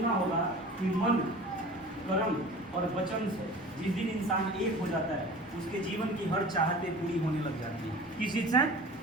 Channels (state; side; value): normal; both; correlation 0.40